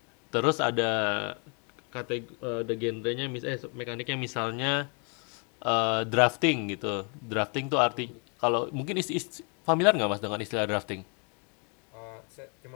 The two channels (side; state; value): right; quieter; 37.5 dB